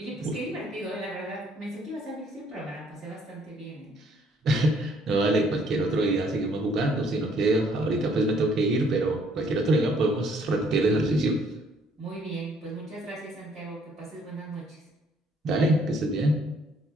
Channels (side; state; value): both; normal; correlation 0.64